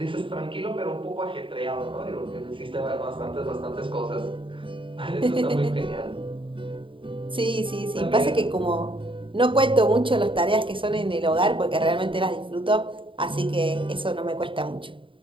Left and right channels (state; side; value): late; left; 0.25 ms